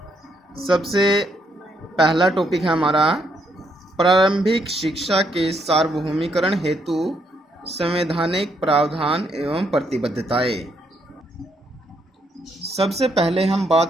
सबसे पहला टॉपिक है हमारा प्रारंभिक शिक्षा के सार्वभौमिकरण हेतु संवैधानिक प्रावधान एवं प्रतिबद्धताएं। सबसे पहले हम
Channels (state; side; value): normal; both; correlation 0.74